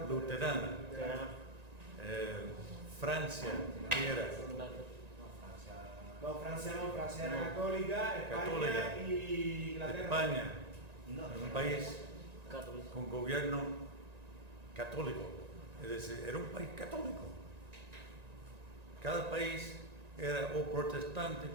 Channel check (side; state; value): left; late; 1.9 ms